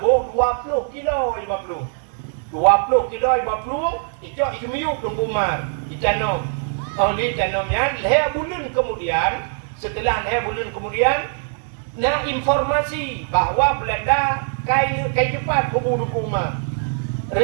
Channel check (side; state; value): left; silent; 60 dB below the other